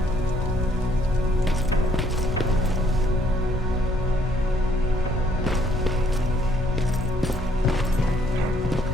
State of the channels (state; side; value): normal; both; correlation 0.65